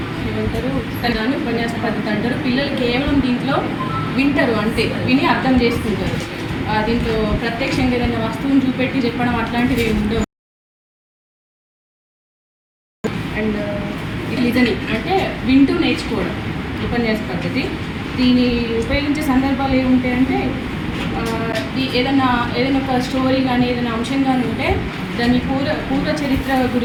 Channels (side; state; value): both; identical; correlation 1.00